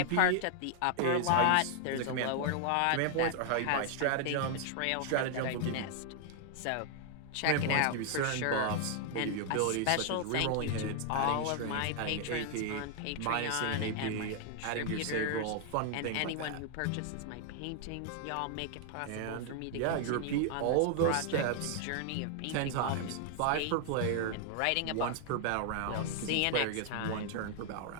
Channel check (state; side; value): different; both; correlation 0.00